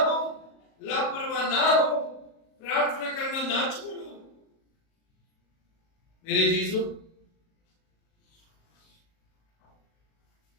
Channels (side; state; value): right; late; 37 ms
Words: लापरवाह ना हो। प्रार्थना करना ना छोड़ो। मेरे जीजो,